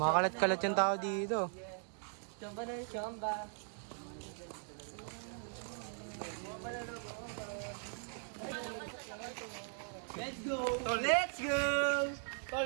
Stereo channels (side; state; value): left; silent; 52 dB below the other